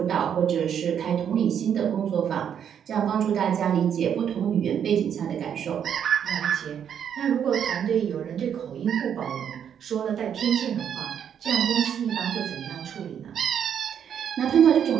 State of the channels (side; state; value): left; quieter; 8.6 dB